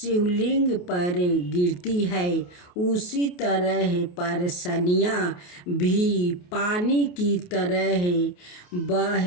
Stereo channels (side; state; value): right; late; 28 ms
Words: पर गिरती है, उसी तरह परसनियाँ भी पानी की तरह